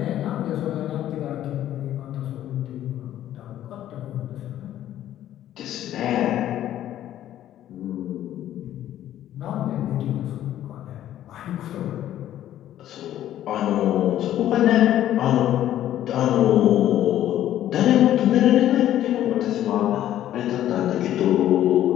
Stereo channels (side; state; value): right; quieter; 12.2 dB